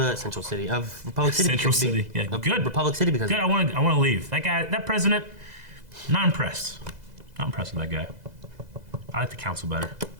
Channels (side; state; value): left; late; 2.0 ms